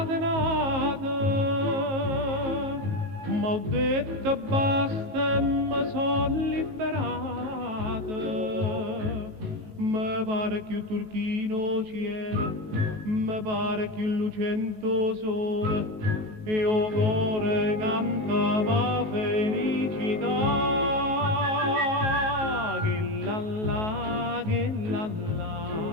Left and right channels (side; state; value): left; late; 19 ms